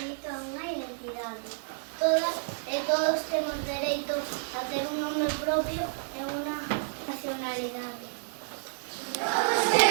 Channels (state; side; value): silent; left; digital silence